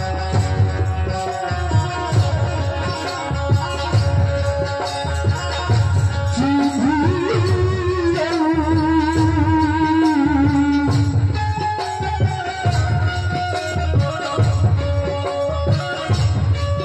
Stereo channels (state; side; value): identical; both; correlation 1.00